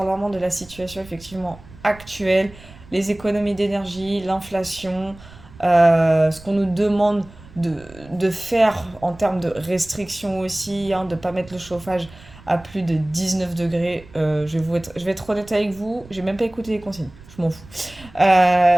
vraiment de la situation effectivement actuelle. Les économies d'énergie, l'inflation, ce qu'on nous demande de, de faire en termes de restrictions aussi, hein, de ne pas mettre le chauffage à plus de 19 degrés. Je vais être honnête avec vous, j'ai même pas écouté les consignes. je m'en fous.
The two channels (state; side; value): noise; right; rumble, 21 dB below the sound